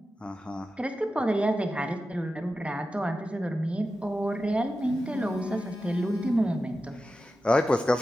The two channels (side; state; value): both; normal; correlation 0.92